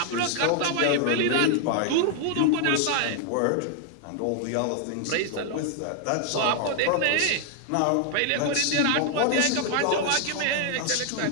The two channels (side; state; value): both; different; correlation 0.00